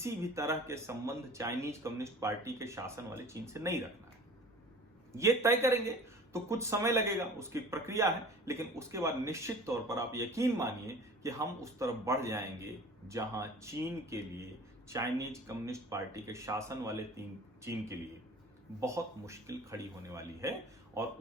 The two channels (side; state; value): both; normal; correlation 0.43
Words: भी तरह के संबंध चाइनीज कम्युनिस्ट पार्टी के शासन वाले चीन से नहीं रखना है। ये तय करेंगे तो कुछ समय लगेगा, उसकी प्रक्रिया है, लेकिन उसके बाद निश्चित तौर पर आप यकीन मानिए कि हम उस तरफ बढ़ जाएंगे जहां चीन के लिए, चाइनीज कम्युनिस्ट पार्टी के शासन वाले चीन के लिए बहुत मुश्किल खड़ी होने वाली है। और